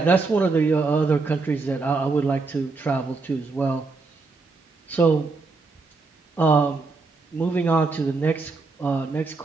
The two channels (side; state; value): left; quieter; 4.0 dB